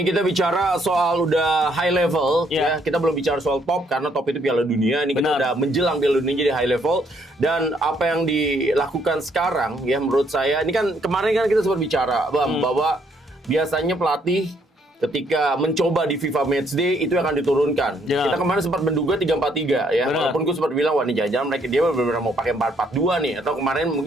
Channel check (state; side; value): normal; both; correlation 0.70